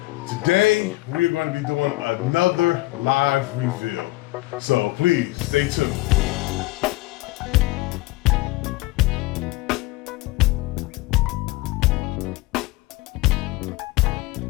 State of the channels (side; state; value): right; quieter; 19.9 dB